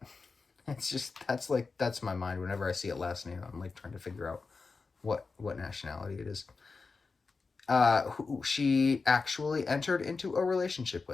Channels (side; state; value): right; quieter; 4.4 dB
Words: it's just, that's my mind. Whenever I see a last name, I'm like trying to figure out what nationality it is. Who she actually entered into a relationship